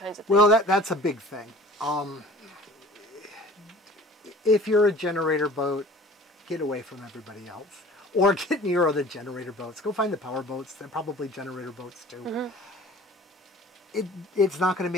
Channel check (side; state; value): both; normal; correlation 0.46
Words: of things. Well, that's a big thing. If you're a generator boat, get away from everybody else. Or get near other generator boats. Go find the power boats. They're probably generator boats too. It's not going to